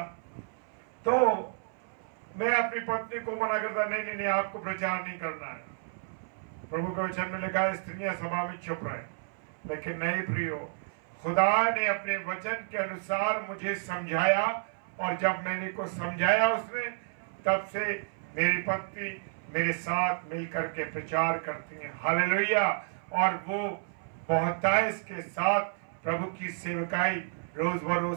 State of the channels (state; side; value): silent; left; 57 dB below the other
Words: तो मैं अपनी पत्नी को मना करता, नहीं नहीं नहीं आपको प्रचार नहीं करना है। प्रभु के वचन में लिखा है स्त्रियां सभा में चुप रहे, लेकिन नहीं प्रियो, खुदा ने अपने वचन के अनुसार मुझे समझाया और जब मैंने को समझाया उसने, तब से मेरी पत्नी मेरे साथ मिलकर के प्रचार करती हैं। हालेलुया। और वो बहुतायत के साथ प्रभु की सेवकाई रोज